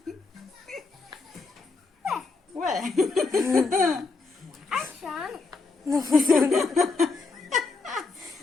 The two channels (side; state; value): right; quieter; 4.0 dB